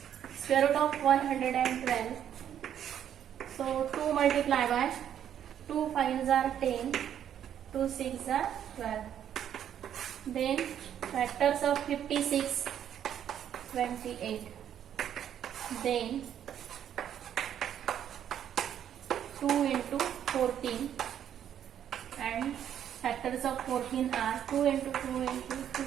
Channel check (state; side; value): quieter; left; 9.8 dB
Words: Square root of 112. So 2 multiply by 2 5s are 10, 2 6s are 12. Then factors of 56, 28. Then 2 into 14, and factors of 14 are 2 into 2 into 2